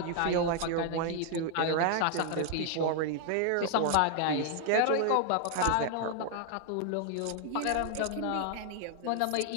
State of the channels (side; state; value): both; different; correlation 0.00